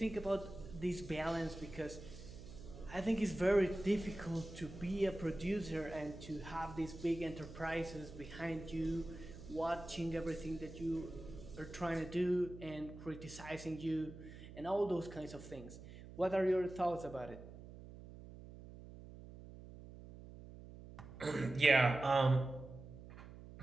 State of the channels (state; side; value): noise; right; hum, 15 dB below the sound